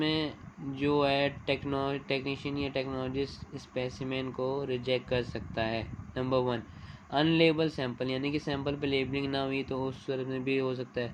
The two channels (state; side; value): identical; both; correlation 1.00